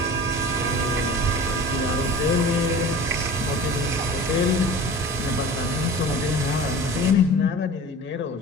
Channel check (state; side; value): normal; both; correlation 0.38